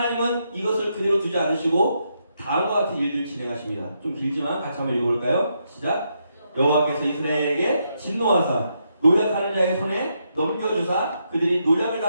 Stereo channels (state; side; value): inverted; both; correlation -0.80